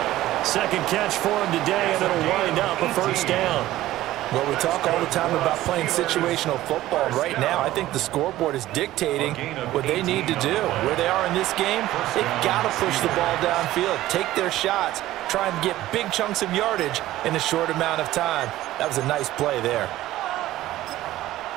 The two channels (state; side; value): quieter; left; 15.2 dB